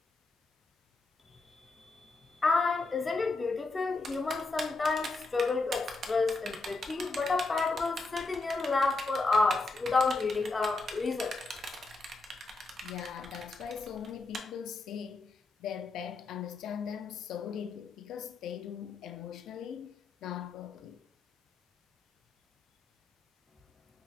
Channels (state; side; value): quieter; right; 3.5 dB